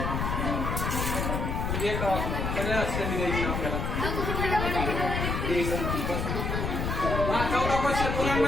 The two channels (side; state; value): left; noise; rumble, 1 dB below the sound